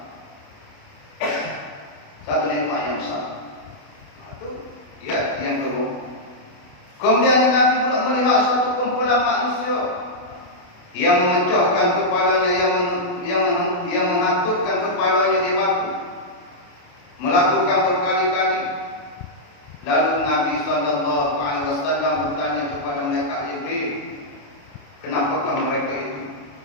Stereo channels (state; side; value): late; right; 28 ms